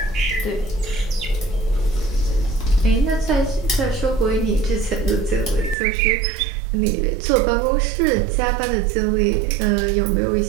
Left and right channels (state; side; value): drops out; left; at 5.8 s